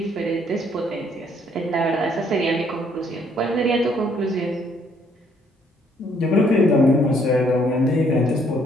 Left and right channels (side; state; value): both; normal; correlation 0.66